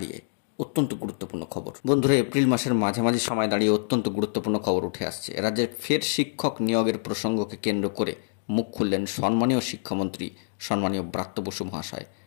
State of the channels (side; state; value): right; silent; digital silence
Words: অত্যন্ত গুরুত্বপূর্ণ খবর। বন্ধুরা, এপ্রিল মাসের মাঝামাঝি সময় দাঁড়িয়ে অত্যন্ত গুরুত্বপূর্ণ খবর উঠে আসছে। রাজ্যে ফের শিক্ষক নিয়োগের প্রসঙ্গকে কেন্দ্র করে মুখ খুললেন সম্মানীয় শিক্ষামন্ত্রী সম্মানীয় ব্রাত্য বসু মহাশয়।